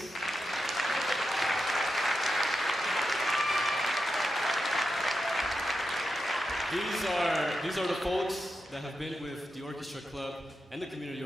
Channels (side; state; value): both; normal; correlation 0.88